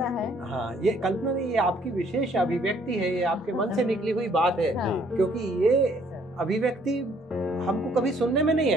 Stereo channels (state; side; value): normal; both; correlation 0.63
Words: है। हाँ, ये कल्पना नहीं, ये आपकी विशेष अभिव्यक्ति है, ये आपके मन से निकली हुई बात है। क्योंकि ये अभिव्यक्ति हमको कभी सुनने में नहीं